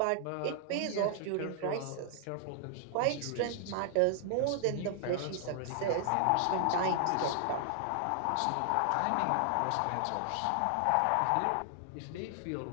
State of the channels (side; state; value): both; different; correlation 0.00